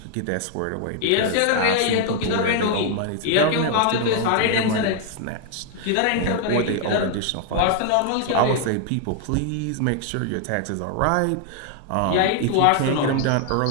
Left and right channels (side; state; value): both; different; correlation 0.00